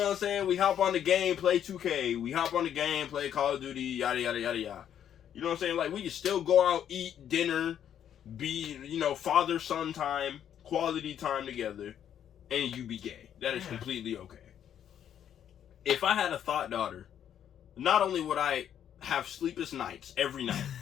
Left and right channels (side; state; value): right; quieter; 9.6 dB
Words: what I'm saying? We hop on the game, play 2K. We hop on the game, play Call of Duty, yada, yada, yada, yada. You know what I'm saying? Like, we can still go out, eat dinner, be, you know, father-son time, quality time together, and you be gay. That is completely okay. If I had a thought daughter, not only would I have sleepless nights every night